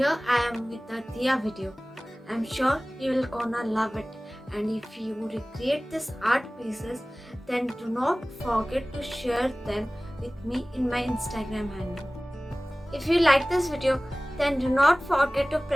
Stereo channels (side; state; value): both; normal; correlation 0.98